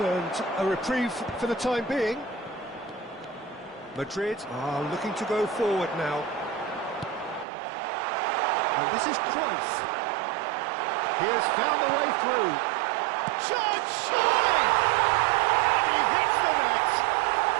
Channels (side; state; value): left; drops out; at 7.5 s